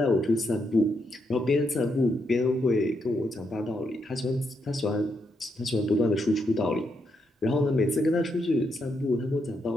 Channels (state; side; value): normal; both; correlation 0.80